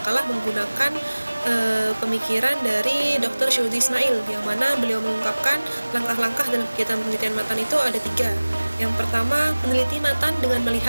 menggunakan pemikiran dari Dr. Syuhudi Ismail, yang mana beliau mengungkapkan langkah-langkah dalam kegiatan penelitian matan itu ada 3. Yang pertama, meneliti matan dengan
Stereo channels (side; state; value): both; inverted; correlation -1.00